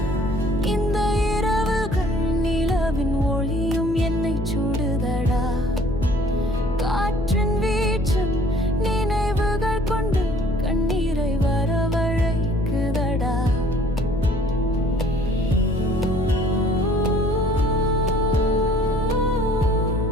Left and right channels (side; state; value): left; noise; hum, 8 dB below the sound